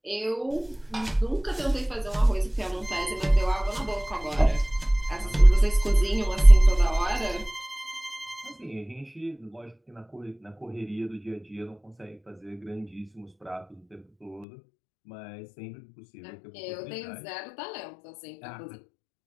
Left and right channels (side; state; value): right; drops out; at 14.5 s